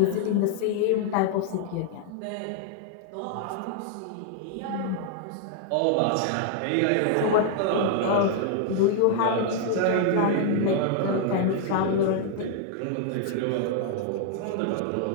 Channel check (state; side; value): different; both; correlation -0.01